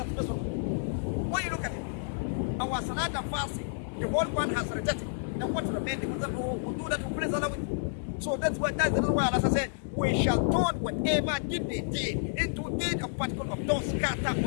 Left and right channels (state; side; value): silent; right; digital silence